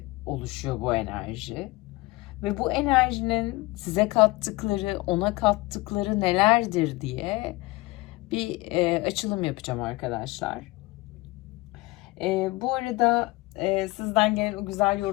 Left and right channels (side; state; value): right; quieter; 21.8 dB